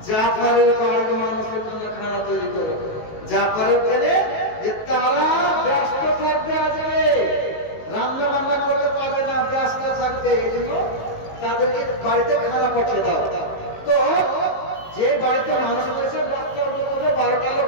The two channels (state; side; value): late; right; 19 ms